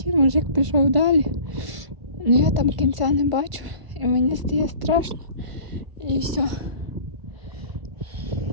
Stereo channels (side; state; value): left; late; 1.4 ms